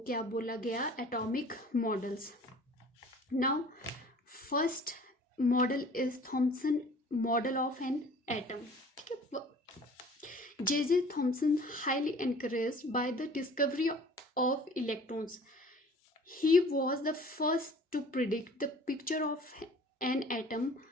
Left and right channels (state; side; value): normal; both; correlation 0.48